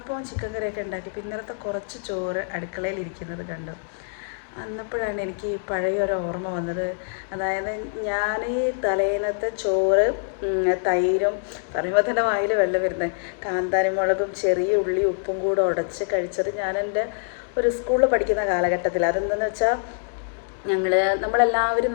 ചിക്കൻ കറിയൊക്കെ ഉണ്ടാക്കിയപ്പോൾ ഇന്നലത്തെ കുറച്ച് ചോറ് അടുക്കളയിൽ ഇരിക്കുന്നത് കണ്ടു. അന്നപ്പോഴാണ് എനിക്ക് പഴയൊരു ഓർമ്മ വന്നത്. അതായത് ഞാൻ ഈ തലേന്നത്തെ ചോറ് തൈരും പറയുമ്പോൾ തന്നെ വായിൽ വെള്ളം വരുന്നത്, കാന്താരി മുളകും ചെറിയ ഉള്ളി ഉപ്പും കൂടെ ഉടച്ച് കഴിച്ചത് ഞാൻ എൻ്റെ ഒരു സ്കൂളിൽ പഠിക്കുന്ന കാലഘട്ടത്തിൽ. അതെന്തെന്ന് വെച്ചാൽ നമ്മളെല്ലാവരും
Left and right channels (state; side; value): silent; right; digital silence